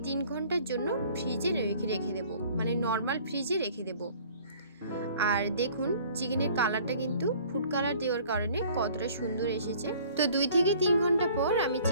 3 ঘন্টার জন্য ফ্রিজে রেখে দেব, মানে নর্মাল ফ্রিজে রেখে দেব। আর দেখুন চিকেনের কালারটা কিন্তু ফুড কালার দেওয়ার কারণে কতটা সুন্দর এসেছে। তো 2 থেকে 3 ঘন্টা পর আমি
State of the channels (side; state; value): both; inverted; correlation -0.52